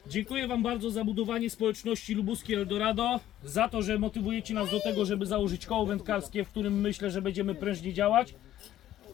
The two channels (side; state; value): right; quieter; 12.7 dB